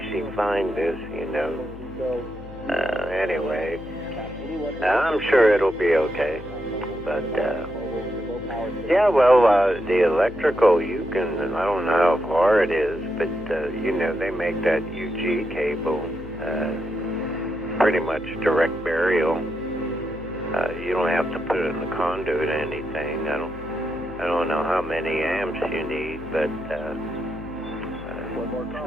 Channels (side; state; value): left; noise; hum, 15 dB below the sound